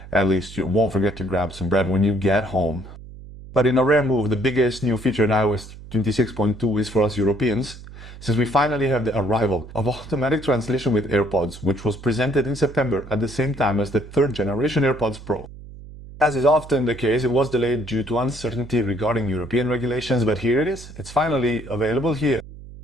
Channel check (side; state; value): right; noise; hum, 16 dB below the sound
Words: at least you won't forget to grab some bread when you get home. But in a rare move, the biggest new feature in iOS 26.2 is for us Europeans, since we finally have the arrival of automatic translation with AirPods, which was presented in September at the same time as the third generation AirPods Pro. As is often the case, it was delayed due to uncertainty regarding European regulations, but here it is. It's finally available here.